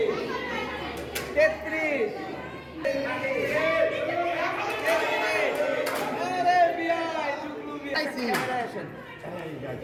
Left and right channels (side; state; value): both; identical; correlation 1.00